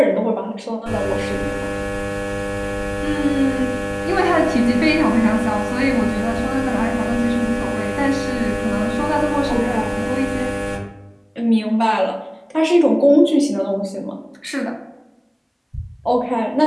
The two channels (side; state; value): both; identical; correlation 1.00